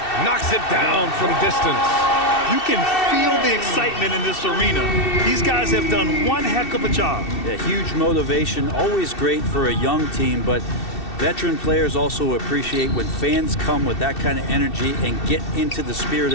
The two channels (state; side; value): late; right; 2.7 ms